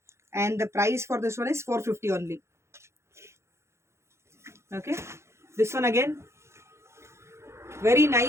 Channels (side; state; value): left; late; 0.13 ms